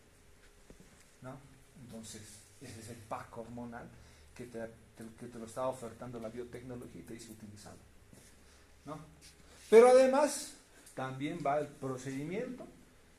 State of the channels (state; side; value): identical; both; correlation 1.00